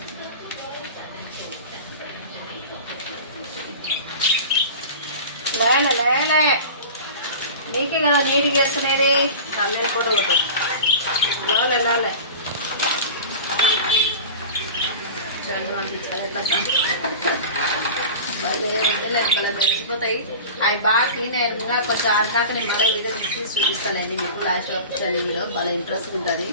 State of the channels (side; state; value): both; inverted; correlation -0.34